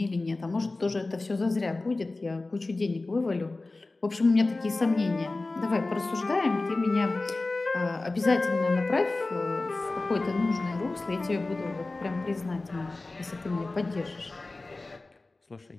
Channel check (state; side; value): quieter; right; 3.2 dB